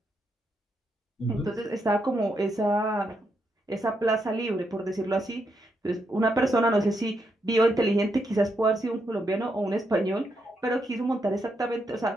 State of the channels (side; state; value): both; normal; correlation 0.80